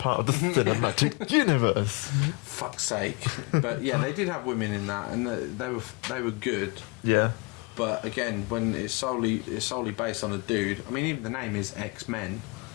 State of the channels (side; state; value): right; quieter; 28.9 dB